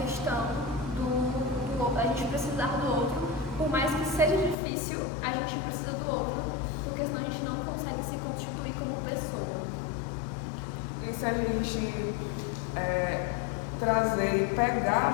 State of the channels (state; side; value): drops out; right; at 4.5 s